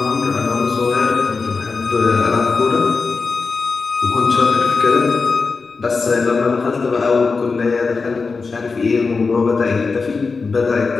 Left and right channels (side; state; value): right; quieter; 4.5 dB